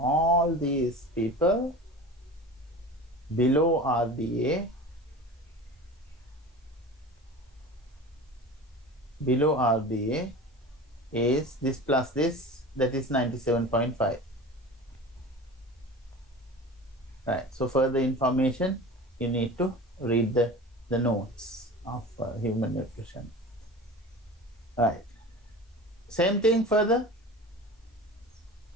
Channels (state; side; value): normal; both; correlation 0.35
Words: these people below RDA, is this plus this, that is 97.5. Right. So further information, you need to read the notes of human nutrition. Right. Same thing further.